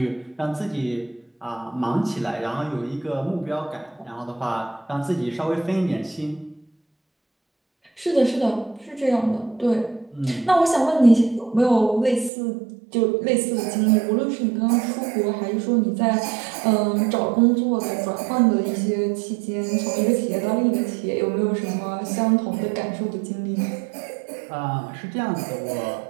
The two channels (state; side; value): drops out; left; at 12.3 s